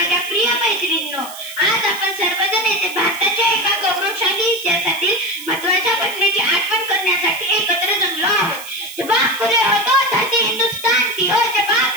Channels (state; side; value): noise; right; hiss, 14 dB below the sound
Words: प्रिय मैत्रिणींनो, आज आपण सर्वजण येथे भारताच्या एका गौरवशाली इतिहासातील महत्त्वाच्या घटनेची आठवण करण्यासाठी एकत्र जमलो आहोत। जब आँख खुले हो तो धरती हिंदुस्तान की हो, जब आँख